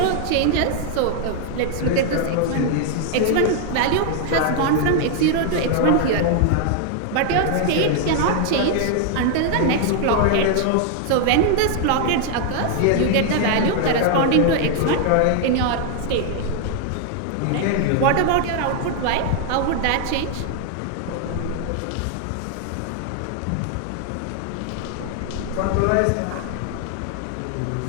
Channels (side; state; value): both; different; correlation 0.00